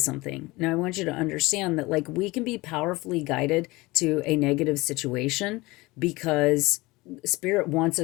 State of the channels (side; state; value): right; quieter; 21.9 dB